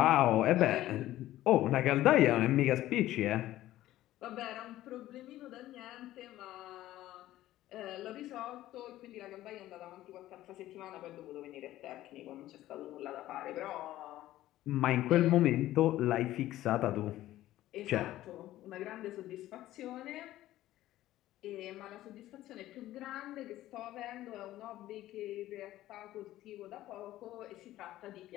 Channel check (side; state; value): right; quieter; 14.7 dB